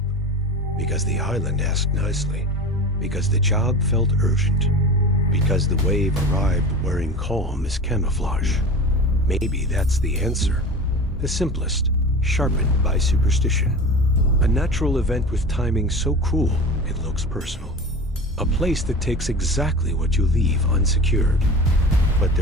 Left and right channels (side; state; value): both; normal; correlation 0.33